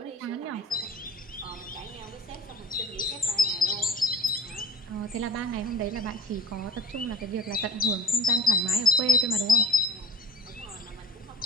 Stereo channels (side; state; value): both; normal; correlation 0.41